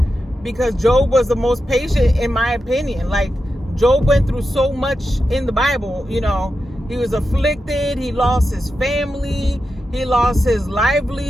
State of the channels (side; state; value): both; normal; correlation 0.89